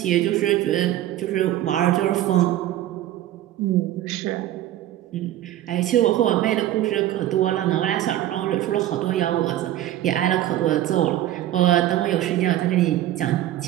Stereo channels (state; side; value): quieter; left; 13.5 dB